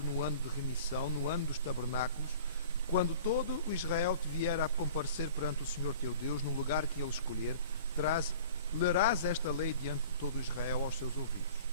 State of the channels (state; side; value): inverted; both; correlation -0.45